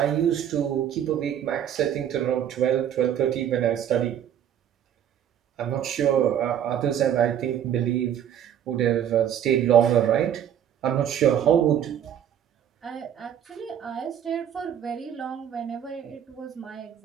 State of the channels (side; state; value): left; quieter; 9.7 dB